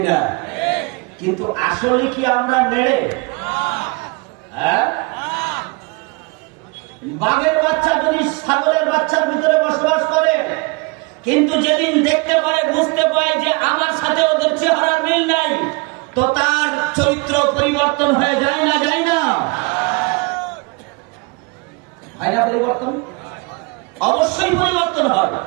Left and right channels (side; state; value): left; quieter; 29.1 dB